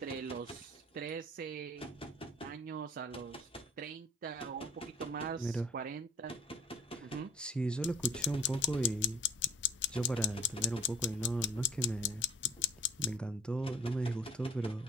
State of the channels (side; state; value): both; normal; correlation 0.50